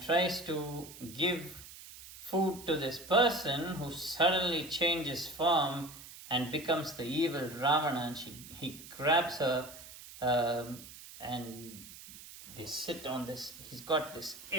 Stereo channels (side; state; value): right; noise; hiss, 16 dB below the sound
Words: tries to give food to this person, who suddenly changes form and becomes the evil Ravana. And he grabs her and they sit on this. He's got this